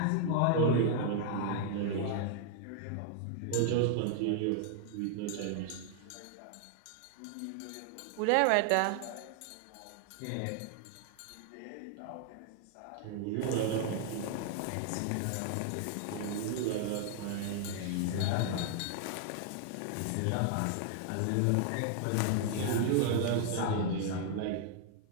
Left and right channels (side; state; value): both; different; correlation 0.00